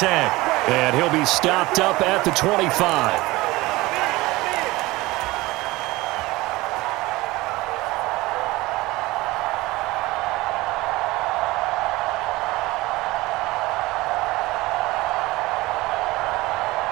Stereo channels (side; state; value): left; quieter; 20.2 dB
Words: And he'll be stopped up at the 25.